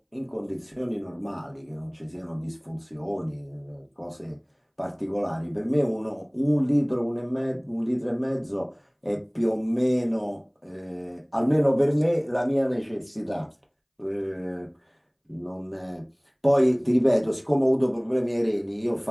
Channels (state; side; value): identical; both; correlation 1.00